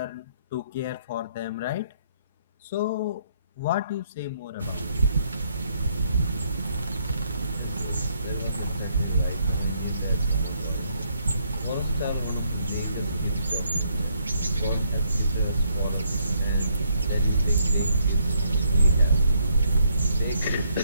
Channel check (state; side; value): inverted; both; correlation -0.71